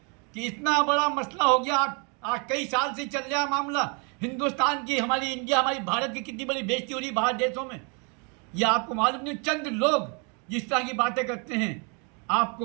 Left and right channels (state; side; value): quieter; left; 35.3 dB